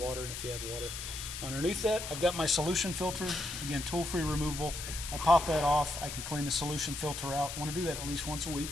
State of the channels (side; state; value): left; noise; hiss, 7 dB below the sound